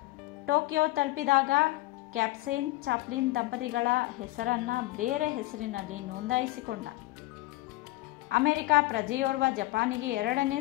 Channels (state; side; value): quieter; right; 19.0 dB